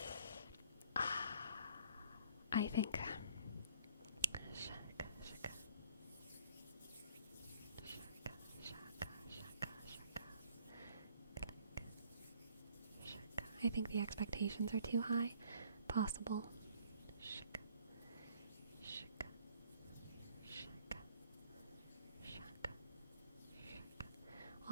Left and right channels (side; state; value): both; inverted; correlation -0.58